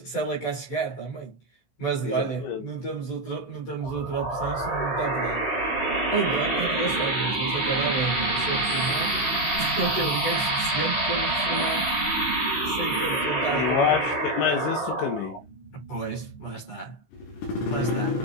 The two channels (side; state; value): right; late; 16 ms